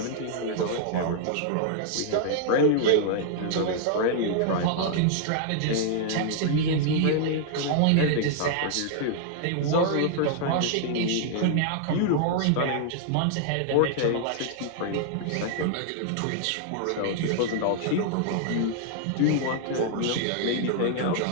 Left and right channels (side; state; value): both; different; correlation -0.01